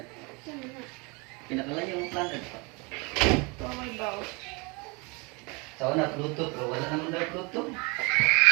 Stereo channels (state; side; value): quieter; left; 29.1 dB